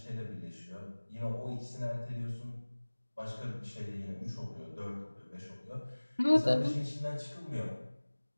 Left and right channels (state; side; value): inverted; both; correlation -1.00